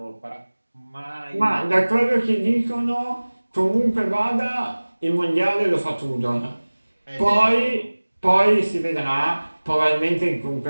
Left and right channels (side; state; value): both; inverted; correlation -1.00